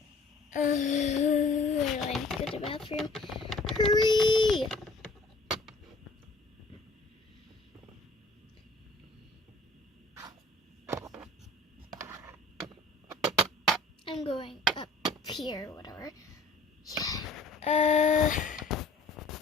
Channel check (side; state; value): right; quieter; 3.0 dB